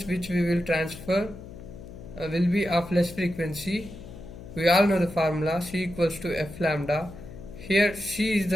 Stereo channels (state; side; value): noise; left; hum, 14 dB below the sound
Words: which we will transfer will be of less frequency. We all know the formula C equals to F lambda. Here C is